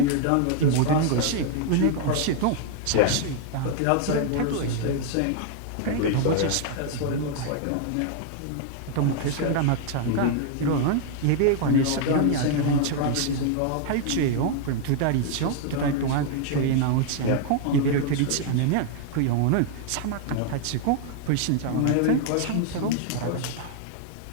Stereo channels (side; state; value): both; different; correlation 0.00